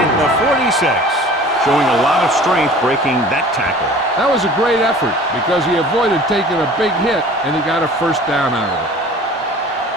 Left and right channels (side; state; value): both; normal; correlation 0.45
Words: 46. Showing a lot of strength breaking that tackle. That was a great effort because he avoided taking a big hit and he got a first down out of it.